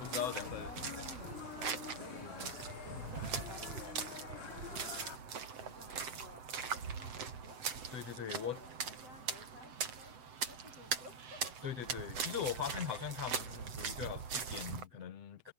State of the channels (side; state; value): left; late; 7.8 ms